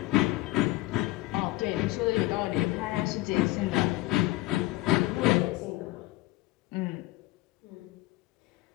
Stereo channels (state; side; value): quieter; right; 18.6 dB